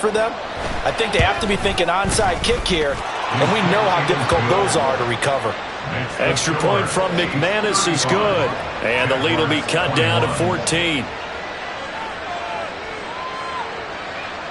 them. I think they have to be thinking onside kick here, and we know how difficult those are to recover. Extra point from McManus is good, and the lead will be cut down to 14.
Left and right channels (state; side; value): identical; both; correlation 1.00